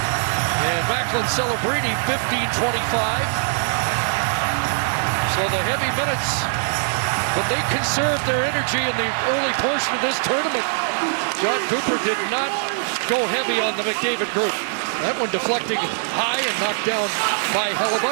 And Macklin Celebrini, 15:25. So the heavy minutes, but they conserved their energy in the early portion of this tournament. John Cooper did not go heavy on the McDavid group. That one deflecting high and knocked down by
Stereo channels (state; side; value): silent; left; digital silence